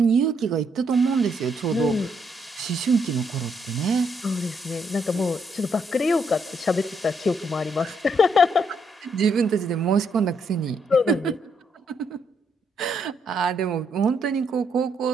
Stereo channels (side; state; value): both; normal; correlation 0.74